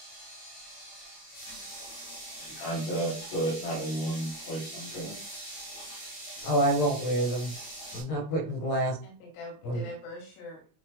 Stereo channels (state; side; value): late; right; 25 ms